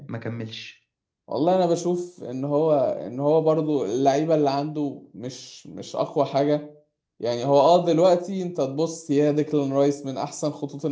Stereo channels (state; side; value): identical; both; correlation 1.00